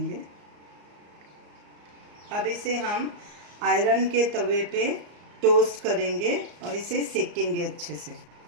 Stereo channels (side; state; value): left; late; 34 ms